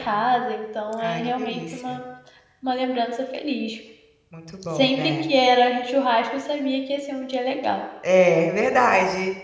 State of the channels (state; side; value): identical; both; correlation 1.00